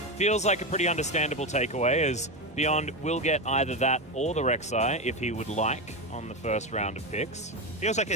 feels like a pretty understandable takeaway, as Beyond will get either that or the Rek'Sai if he would like on the first round of picks. Feels like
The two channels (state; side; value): normal; both; correlation 0.15